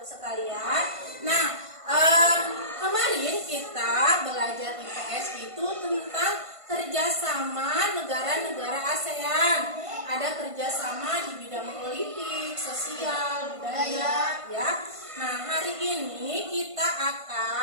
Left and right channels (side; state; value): left; late; 1.5 ms